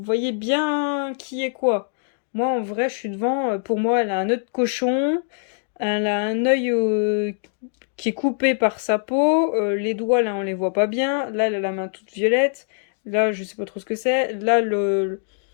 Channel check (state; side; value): silent; right; digital silence